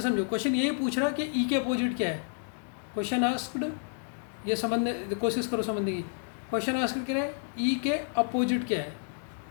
समझो, क्वेश्चन यही पूछ रहा है कि ई के अपोजिट क्या है। क्वेश्चन आस्क्ड, ये समझने कोशिश करो समझने की। क्वेश्चन आस्क्ड क्या है, ई के अपोजिट क्या है?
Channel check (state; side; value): silent; right; 58 dB below the other